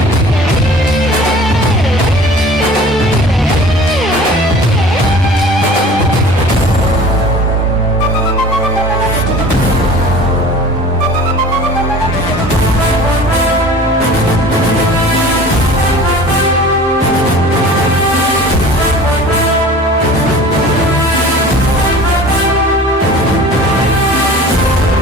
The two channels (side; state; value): both; normal; correlation 0.43